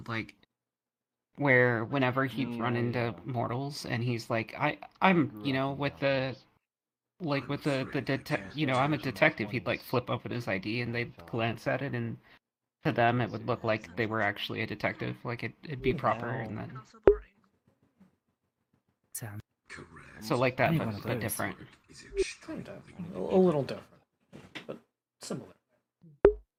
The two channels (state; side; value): identical; both; correlation 1.00